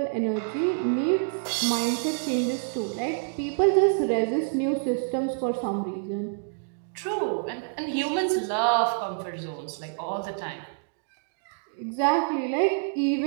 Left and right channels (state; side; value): silent; left; digital silence